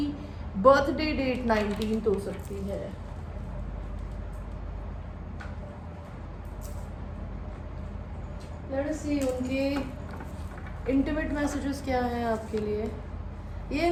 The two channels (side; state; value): both; identical; correlation 1.00